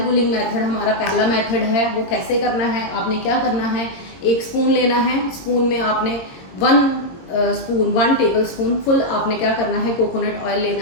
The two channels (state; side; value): late; right; 22 ms